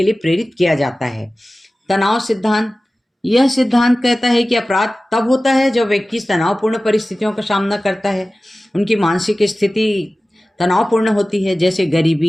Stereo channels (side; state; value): both; normal; correlation 0.96